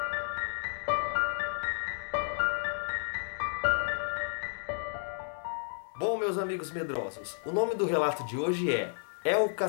Bom, meus amigos medrosos, o nome do relato de hoje é o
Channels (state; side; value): silent; right; 56 dB below the other